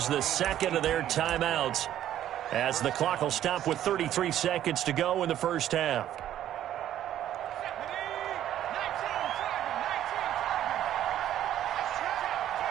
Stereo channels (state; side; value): quieter; left; 11.7 dB